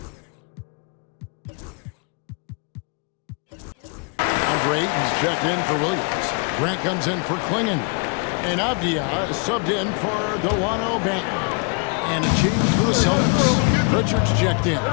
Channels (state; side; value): quieter; right; 35.8 dB